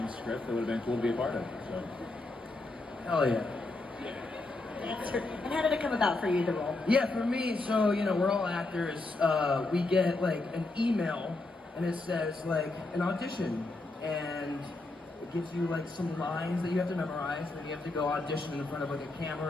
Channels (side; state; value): right; quieter; 3.1 dB